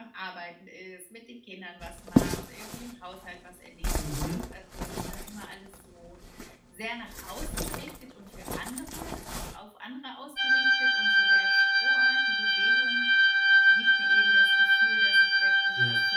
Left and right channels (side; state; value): both; identical; correlation 1.00